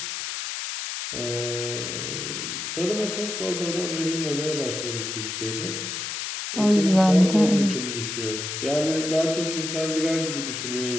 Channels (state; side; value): noise; left; hiss, 5 dB below the sound